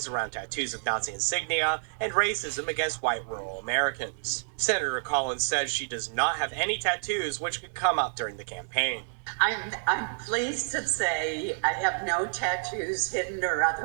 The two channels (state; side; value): silent; left; digital silence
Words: around tattoos of Nazi insignia and racism against white rural Americans. Senator Collins says she does not have any tattoos, which could come up during the campaign. I'm pleased to say I have no tattoos, hidden or